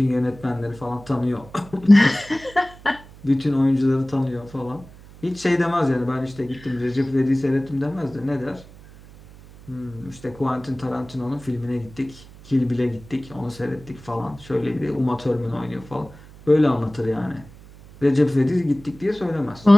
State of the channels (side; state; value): right; noise; hum, 20 dB below the sound